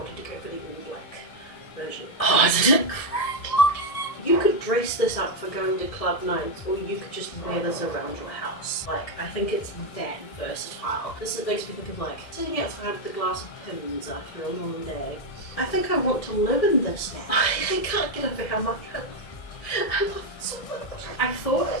to go for the all black version. Oh, isn't it great? You could dress this up for going to club nights, or you could just wear this around your house. Like, I think it's that versatile. This makes me think of like sitting outside with a glass of Pimm's after a long day. I think I want to live in this now. I can't get over how much I love it so much. I thought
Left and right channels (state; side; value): late; right; 1.5 ms